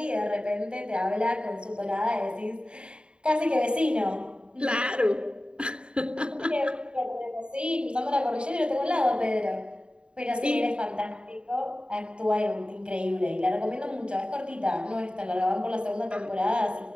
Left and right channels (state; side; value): late; left; 0.053 ms